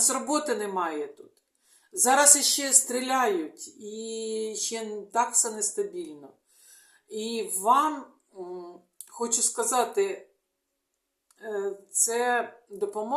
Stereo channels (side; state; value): both; identical; correlation 1.00